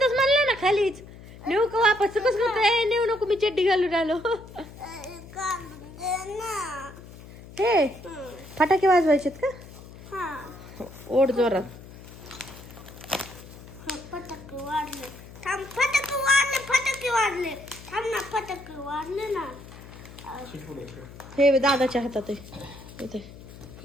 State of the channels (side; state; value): left; noise; hum, 17 dB below the sound